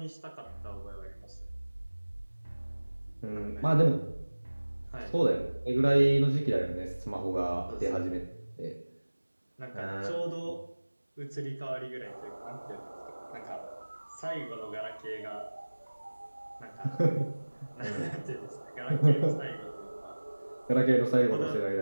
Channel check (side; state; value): both; inverted; correlation -1.00